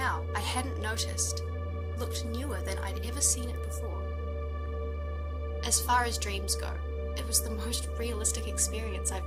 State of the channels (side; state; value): both; identical; correlation 1.00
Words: I hadn't noticed looked newer than I'd ever seen it before. As far as dreams go, it was the most realistic experience